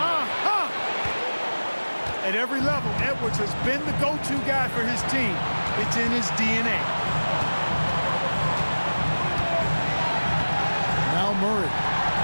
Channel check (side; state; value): both; inverted; correlation -1.00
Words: At every level, Edwards has been the go-to guy for his team. It's in his DNA. Now Murray.